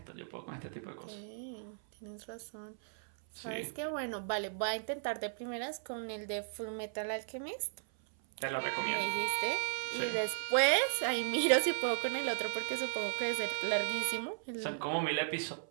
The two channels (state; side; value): silent; left; 54 dB below the other